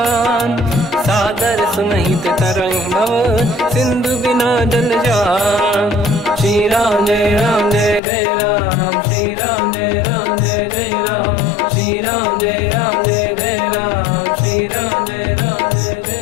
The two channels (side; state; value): right; drops out; at 8.0 s